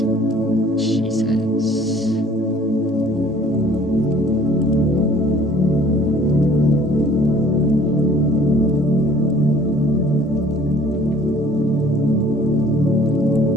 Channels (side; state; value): both; normal; correlation 0.53